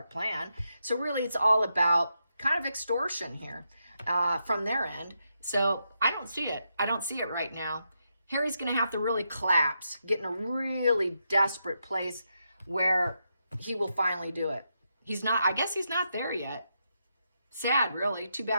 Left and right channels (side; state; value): both; inverted; correlation -0.83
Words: plan. So really, it's all about kind of extortion here from their end. So I don't see it. I don't see it right now. Harry's going to have to really collapse, get in a really desperate place where he will finally do it. He's not, I guess he's not there yet. Sad, really. Too